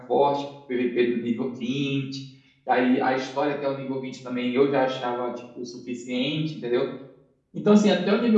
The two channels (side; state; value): both; identical; correlation 1.00